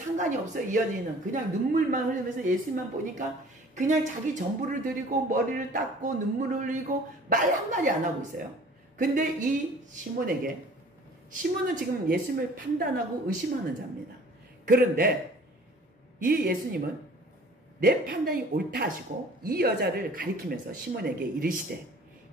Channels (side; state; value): both; normal; correlation 0.49